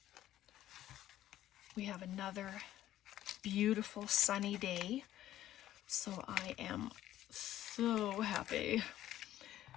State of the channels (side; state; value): right; quieter; 13.1 dB